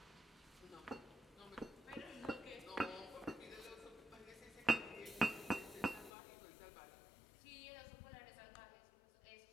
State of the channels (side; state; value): right; drops out; at 6.1 s